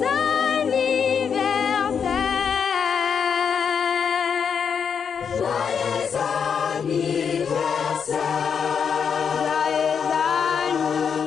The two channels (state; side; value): quieter; right; 6.9 dB